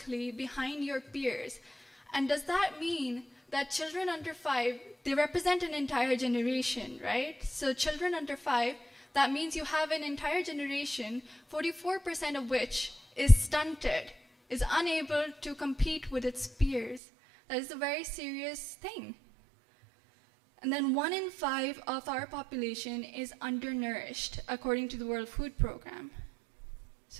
behind your peers. And does that mean that children under 5, they represent an entire generation, right? So children under 5, that means you have an entire generation, 44% of which is stunted, is unable to compete with its peers. That is a very serious thing. And then 1 in 5 of our population is undernourished, according to the World Food Program. So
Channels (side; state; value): left; drops out; at 17.0 s